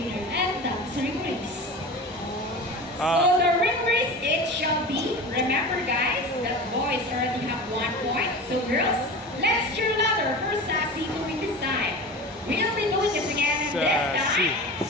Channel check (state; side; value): normal; both; correlation 0.32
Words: and that's a ring race. So the ring race it shall be. Remember guys, that boys already have 1 point. So girls, let's cheer louder for Sassy to win this time. We'll be doing this again and this time.